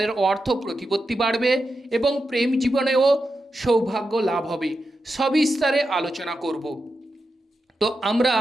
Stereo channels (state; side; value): normal; both; correlation 0.89